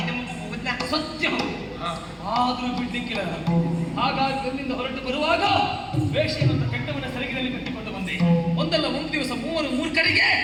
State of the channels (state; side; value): identical; both; correlation 1.00